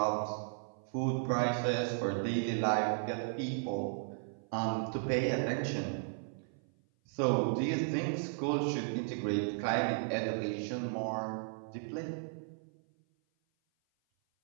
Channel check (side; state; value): left; silent; 54 dB below the other